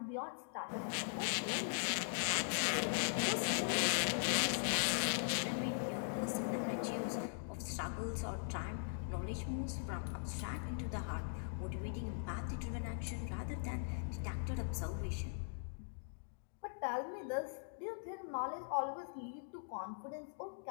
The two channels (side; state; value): right; silent; digital silence